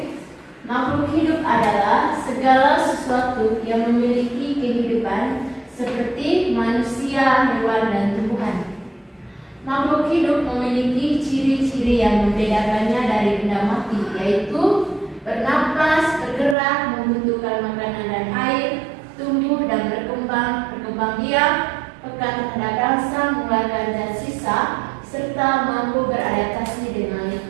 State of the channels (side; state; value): left; drops out; at 16.6 s